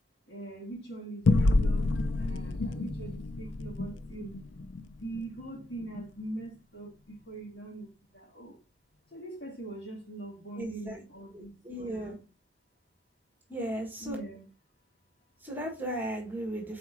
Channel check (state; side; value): normal; both; correlation 0.79